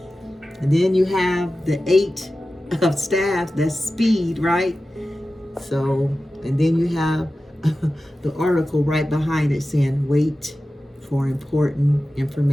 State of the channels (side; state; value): both; normal; correlation 0.94